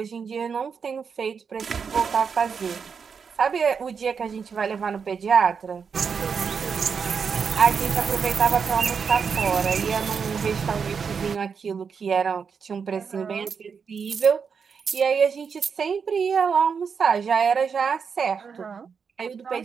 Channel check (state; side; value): quieter; left; 6.1 dB